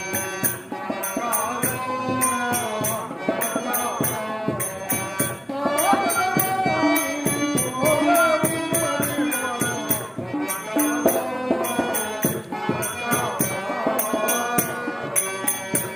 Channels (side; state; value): both; identical; correlation 1.00